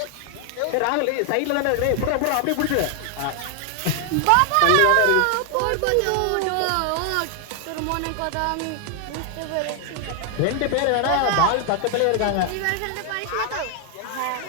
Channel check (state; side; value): different; both; correlation 0.00